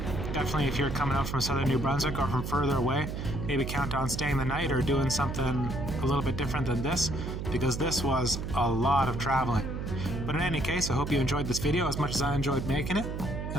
Definitely if you're coming out from southern New Brunswick or from further away, maybe count on staying the night or doing something a little bit different than this, because this was a lot of traveling. But in any case, I hope you enjoyed this video as much as I enjoyed making it,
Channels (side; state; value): right; noise; hum, 5 dB below the sound